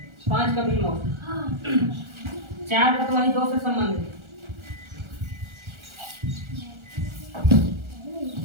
5 का भी नोट, 4 का तो वही 2 से संबंधित।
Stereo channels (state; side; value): late; left; 1.4 ms